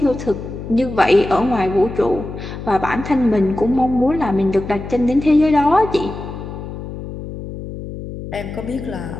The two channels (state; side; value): noise; left; hum, 10 dB below the sound